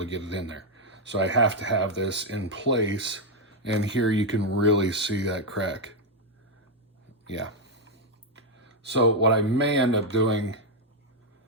get it in there. So I have to have this in place, and here you can really see that crack. Yeah. So what I may end up doing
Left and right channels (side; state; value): both; normal; correlation 0.01